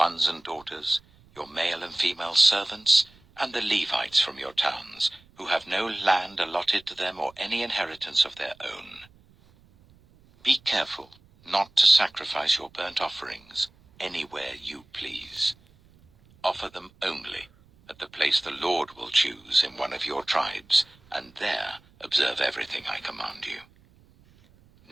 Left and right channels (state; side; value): noise; right; rumble, 29 dB below the sound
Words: and daughters, your male and female servants, and the Levites from your towns, who have no land allotted to them or any inheritance of their own. Be careful not to sacrifice your burnt offerings anywhere you please. Offer them only at the place the Lord will choose in one of your tribes, and there observe everything I command you.